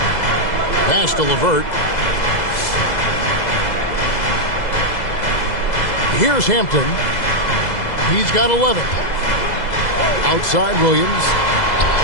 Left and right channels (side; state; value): right; late; 2.0 ms